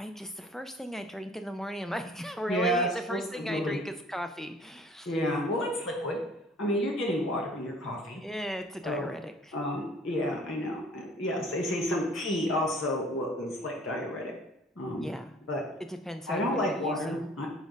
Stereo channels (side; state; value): both; normal; correlation 0.52